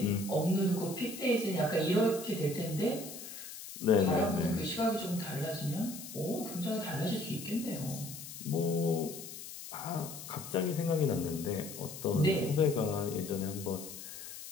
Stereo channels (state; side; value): noise; left; hiss, 11 dB below the sound